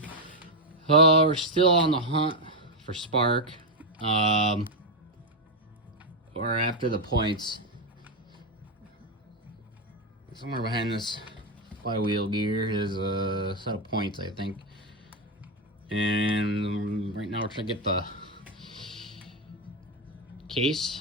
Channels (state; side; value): normal; both; correlation 0.04